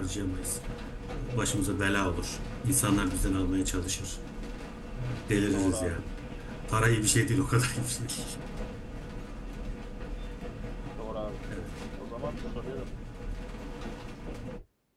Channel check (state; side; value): identical; both; correlation 1.00